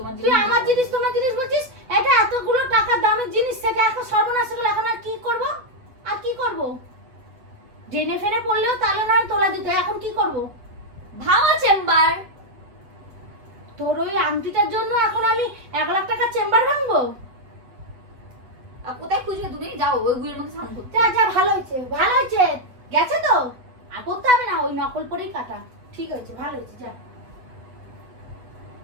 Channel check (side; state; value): left; late; 8.3 ms